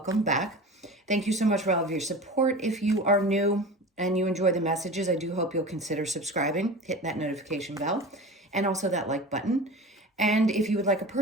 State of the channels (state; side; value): normal; both; correlation 0.34